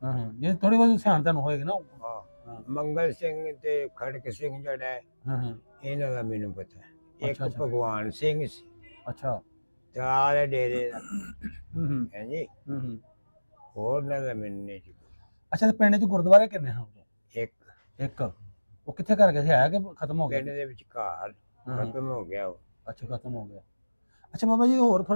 ਹਾਂ ਹਾਂ। ਜੇ ਥੋੜੀ ਬਹੁਤ ਸਿਆਣ ਤੁਹਾਨੂੰ ਹੋਏਗੀ ਨਾ। ਹਾਂ। ਹਾਂ ਮੰਗਲ ਸਿੰਘ ਤੇ ਖੜਕ ਸਿੰਘ ਜਿਹੜਾ ਹੈ, ਹਾਂ ਹਾਂ। ਇਹਨਾਂ ਦਾ ਮੈਨੂੰ ਪਤਾ ਹੈ। ਇੱਕ ਅੱਛਾ, ਅੱਛਾ। ਭਗਵਾਨ ਸਿੰਘ ਸੀ, ਅੱਛਾ। ਤਲਾਲ ਡੇਰੇ ਦਾ। ਹੂੰ ਹੂੰ ਹੈ ਜੀ। ਹੂੰ। ਹੋਰ ਨਾ ਦਾ ਮੈਨੂੰ ਨਹੀਂ ਜੀ। ਅੱਛਾ, ਤੇ ਪਿੰਡ 'ਚ ਗੁਰਦੁਆਰੇ ਕਿੰਨੇ ਹਨ? ਇੱਕ ਇੱਕ। ਉਹ ਕਿੱਥੇ ਕਰ ਗਿਆ ਸੀ, ਹੈ ਕਿ ਖਤਮ ਹੋ ਗਿਆ? ਪਿੰਡ ਦੇ ਵਿਚਕਾਰ ਹਾਂ, ਹਾਂ। ਖਤਮ ਹੋ ਗਿਆ ਉਹ। ਅੱਛਾ, ਖਤਮ ਹੋ ਗਿਆ। ਅੱਛਾ ਬਾਬਾ ਜੀ, ਹੋਰ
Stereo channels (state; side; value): inverted; both; correlation -1.00